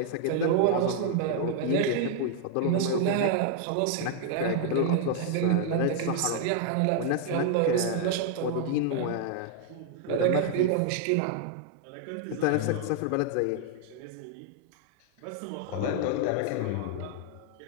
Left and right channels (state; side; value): different; both; correlation 0.00